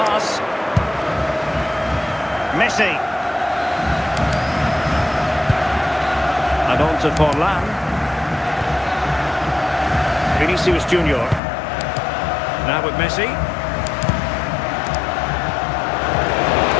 Messi. And on to Forlan. Vinicius Junior. Now with Messi.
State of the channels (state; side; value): drops out; right; at 11.4 s